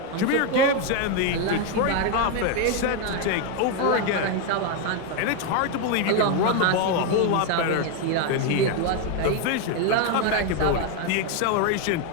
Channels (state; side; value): different; both; correlation 0.02